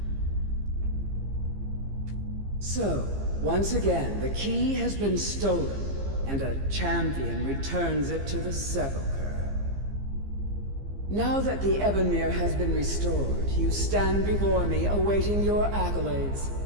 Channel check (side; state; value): left; late; 15 ms